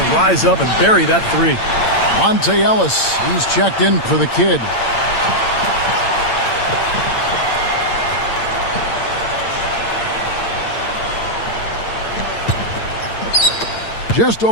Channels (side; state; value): right; late; 8.8 ms